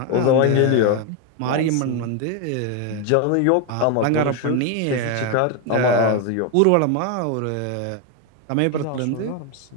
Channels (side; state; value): both; different; correlation 0.01